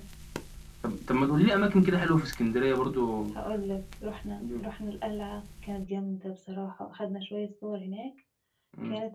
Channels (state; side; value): identical; both; correlation 1.00